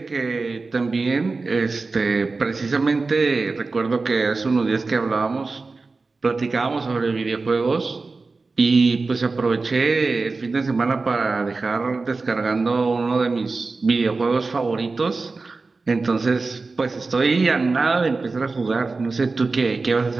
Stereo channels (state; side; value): quieter; left; 3.9 dB